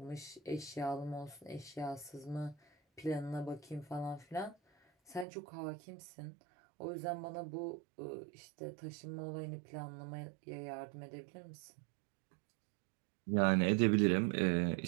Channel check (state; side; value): drops out; left; at 5.2 s